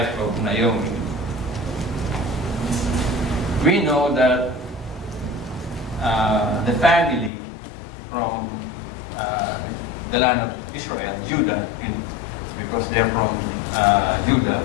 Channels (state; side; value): drops out; right; at 7.3 s